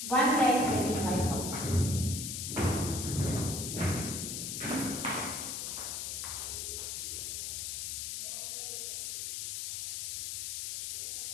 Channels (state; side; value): noise; left; hiss, 3 dB below the sound